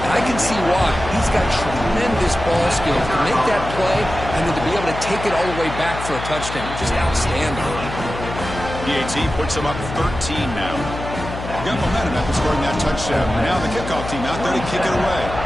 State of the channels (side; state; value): left; noise; hum, 8 dB below the sound